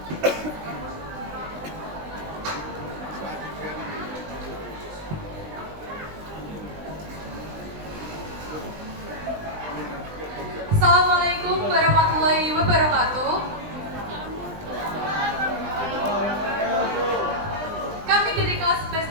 Assalamualaikum warahmatullahi wabarakatuh. Kami dari kelas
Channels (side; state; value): left; late; 20 ms